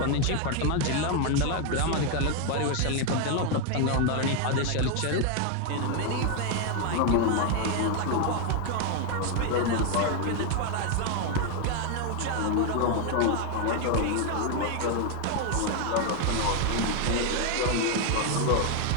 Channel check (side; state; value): both; different; correlation 0.01